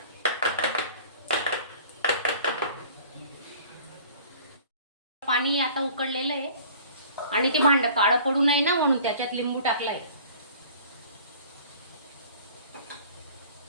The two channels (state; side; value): inverted; both; correlation -0.47